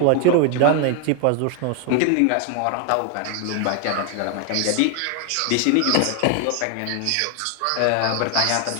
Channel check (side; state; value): both; different; correlation 0.00